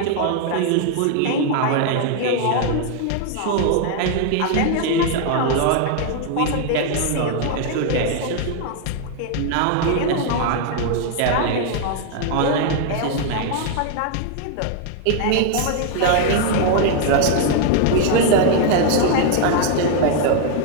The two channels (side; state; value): both; different; correlation 0.00